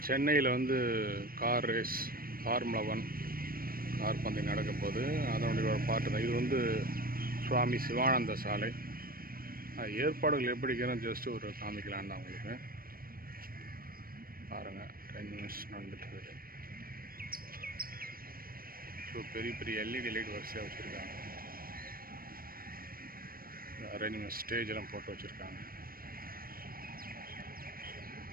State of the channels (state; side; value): late; left; 0.43 ms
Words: சென்னையில் வந்து கார் ரேஸ் ஃபார்முலா 1 கார் பந்தயம் நடக்க போகுது. அதனுடைய ஒரு பாட்டு தான் இது. வந்து சுவாமி சிவானந்த சாலை. ஏற்பாடுகள் எப்படி இருக்கிறோம் ஜஸ்ட் ஒரு காமிக்கலான்னு தான் உங்களுக்கு. பாருங்கள், 10 நிமிஷம் நடந்துட்டுருக்கு. ஸோ பெரிய பெரிய எல்இடி லைட் வரிசையாக வச்சுருக்காங்க. அரேஞ்ச்மெண்ட் ஸ்டேஜ் எல்லாம் போட்டு வச்சுருக்காங்க.